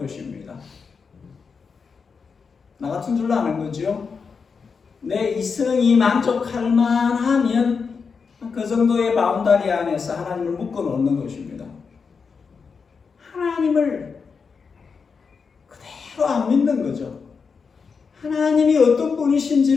나 같은 줄로 아는 거죠. 내 이성이 만족할 만하면 그 정도의 바운다리 안에서 하나님을 묶어 놓는 것입니다. 하나님을 그대로 안 믿는 거죠. 하나님이 어떤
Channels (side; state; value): right; quieter; 5.4 dB